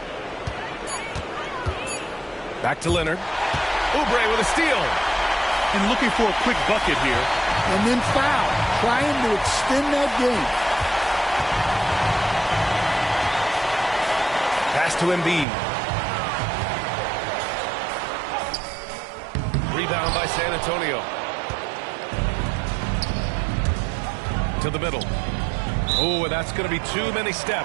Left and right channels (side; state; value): left; drops out; at 15.5 s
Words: Back to Leonard. Oubre with a steal. And looking for a quick bucket here. And then foul. Trying to extend that game. Pass to Embiid. Rebound by San Antonio. To the middle. Oh, and that's going to be too many